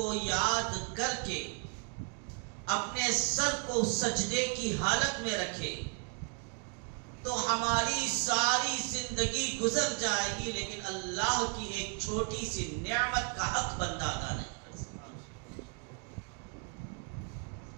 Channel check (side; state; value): left; quieter; 38.7 dB